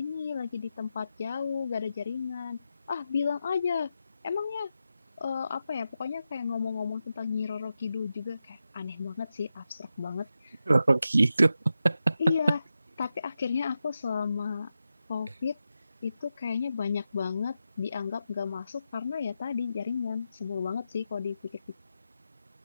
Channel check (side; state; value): both; inverted; correlation -0.89